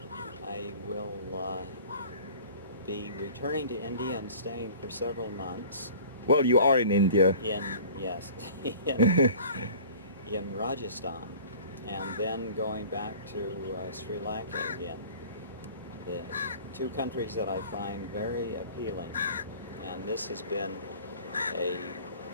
I will be returning to India and staying for several months. Well, you are in India. Yes, in Rajasthan, and then going back to Sri Lanka again. The two countries that I find very appealing, and this has been a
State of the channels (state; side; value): inverted; both; correlation -0.45